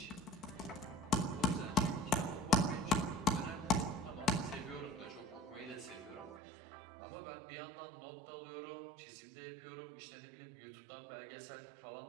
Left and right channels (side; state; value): left; drops out; at 6.4 s